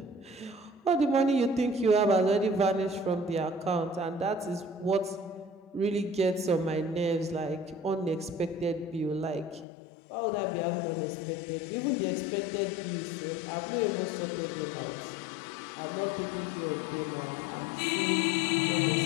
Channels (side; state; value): right; drops out; at 9.7 s